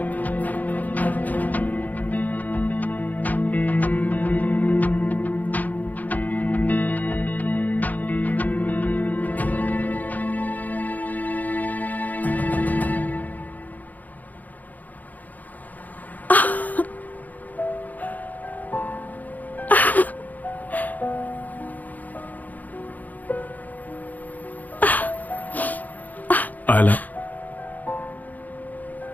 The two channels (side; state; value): right; late; 0.081 ms